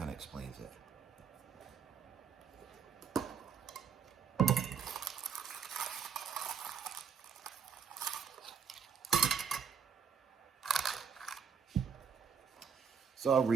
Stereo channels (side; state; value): left; quieter; 6.8 dB